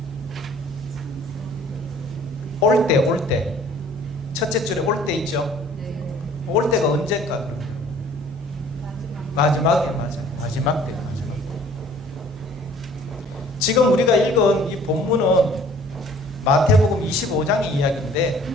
올 때. 첫째 줄에 올 때 있죠? 올 때가 언제일까, 그러면? 마지막에, 맞아요. 마지막 때. 지금 우리가 읽은 이 본문은 마태복음 25장의 이야기인데,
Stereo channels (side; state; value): both; normal; correlation 0.53